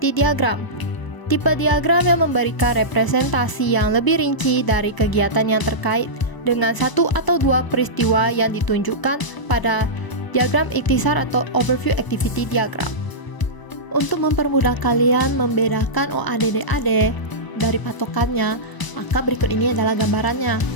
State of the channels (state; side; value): late; right; 1.0 ms